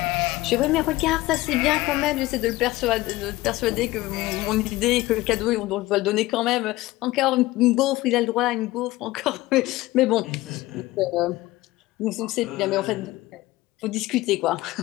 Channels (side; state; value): right; quieter; 18.4 dB